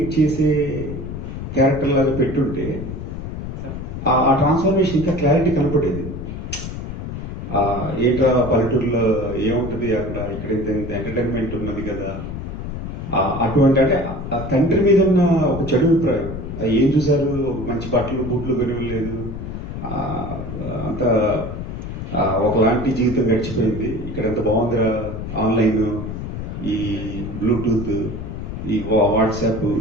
చేసే క్యారెక్టర్ లాగా పెట్టుంటే ఆ ట్రాన్స్ఫర్మేషన్ ఇంకా క్లారిటీ కనపడేది. ఏంట్రా పల్లెటూరులో ఏముంటుంది అక్కడ, ఇక్కడ ఇంత ఎంటర్టైన్మెంట్ ఉన్నది కదా, అటువంటి అంటే ఆ తండ్రి మీద ఉన్న ఒక చెడు అభిప్రాయం. ఏం చూసారు, మంచి బట్టలు బూట్లు కొనివ్వలేదు, అంత ఒకలాంటి జీవితం గడిచిపోయింది, ఇక్కడ ఎంత బాగుందిరా ఆన్లైన్, ఈ బ్లూటూత్, ఈ వాట్సాప్,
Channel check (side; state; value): left; noise; rumble, 7 dB below the sound